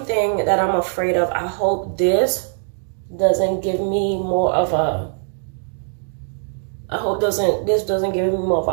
that I'm afraid of, I hope this doesn't give me more of a, this doesn't give me more of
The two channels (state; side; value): silent; left; digital silence